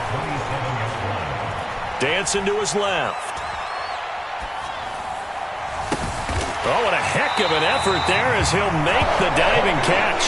Dancing to his left. Oh, what a heck of an effort there as he'll make the diving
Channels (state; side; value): identical; both; correlation 1.00